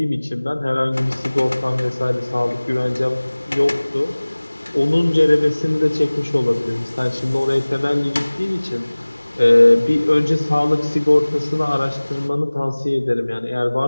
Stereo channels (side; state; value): both; inverted; correlation -1.00